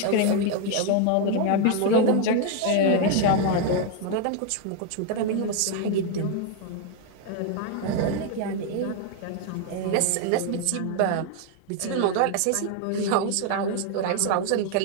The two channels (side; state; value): both; different; correlation 0.00